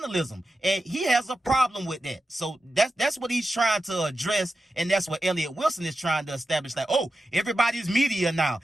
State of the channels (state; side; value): normal; both; correlation 0.91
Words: and he has a problem with that. So that's what he's trying to address, and that's what Elliott Wilson is trying to establish, like, oh, everybody's media now.